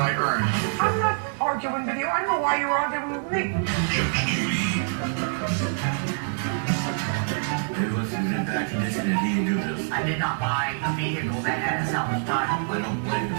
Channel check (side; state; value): left; silent; digital silence